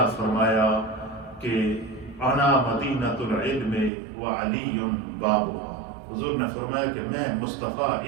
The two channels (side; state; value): left; drops out; at 3.9 s